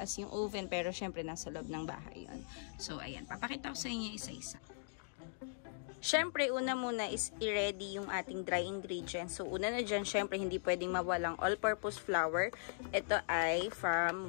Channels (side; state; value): right; silent; digital silence